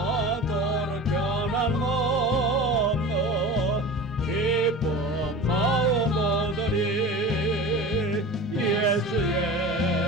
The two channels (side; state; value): both; normal; correlation 0.34